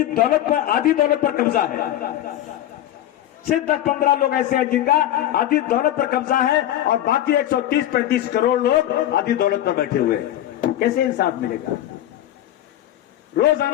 दौलत पर, आधी दौलत पर कब्जा है। सिर्फ 10-15 लोग ऐसे हैं जिनका आधी दौलत पर कब्जा है और बाकी 130-135 करोड़ लोग आधी दौलत पर बैठे हुए हैं। कैसे इंसाफ मिलेगा?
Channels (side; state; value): right; quieter; 12.7 dB